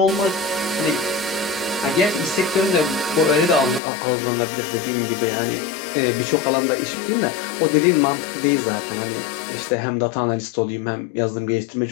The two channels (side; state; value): right; drops out; at 3.8 s